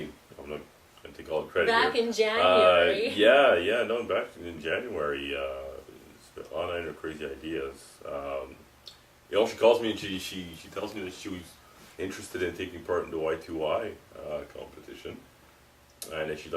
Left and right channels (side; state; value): both; identical; correlation 1.00